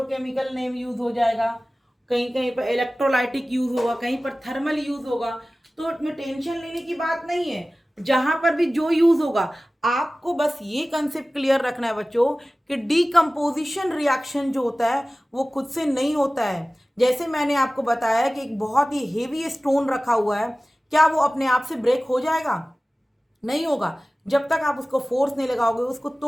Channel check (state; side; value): normal; both; correlation 0.97